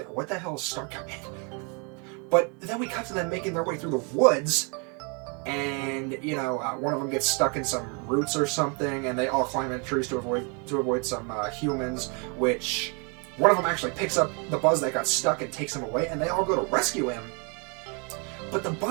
What the hell is Star Command? But then we cut to them making their way through the woods. And one of them gets stuck in some roots or something, and they all climb in trees to avoid some humans. Which one of them actually picks up the Buzz that got stuck and takes him away, and they all go to rescue him. But the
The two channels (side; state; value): left; quieter; 34.6 dB